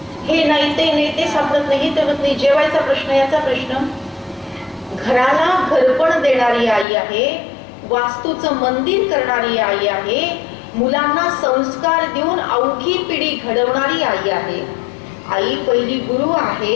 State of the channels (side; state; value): right; drops out; at 6.9 s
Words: हे नाही ते सापडत नाही, तर नाही. जेवायचा प्रश्न, याचा प्रश्न. घराला घरपण देणारी आई आहे, वास्तूचं मंदिर करणारी आई आहे, मुलांना संस्कार देऊन अवघी पिढी घडवणारी आई आहे. आई पहिली गुरु आहे